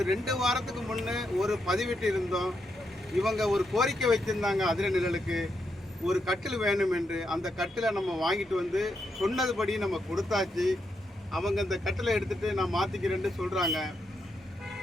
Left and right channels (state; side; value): normal; both; correlation 0.82